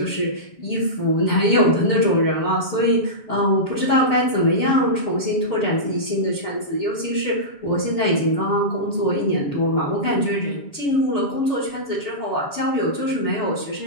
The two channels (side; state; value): right; late; 7.2 ms